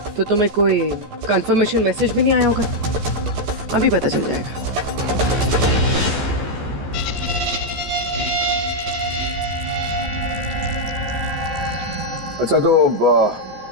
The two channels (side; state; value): left; late; 14 ms